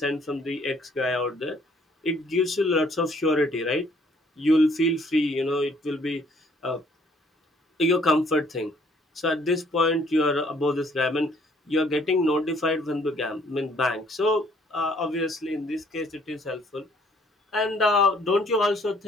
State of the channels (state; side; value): normal; both; correlation 0.62